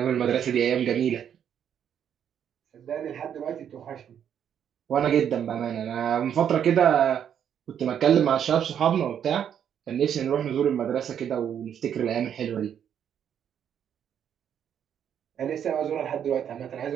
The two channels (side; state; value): left; quieter; 8.9 dB